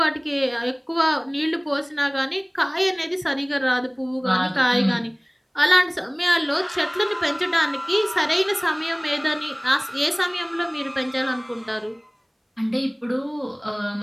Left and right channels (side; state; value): both; identical; correlation 1.00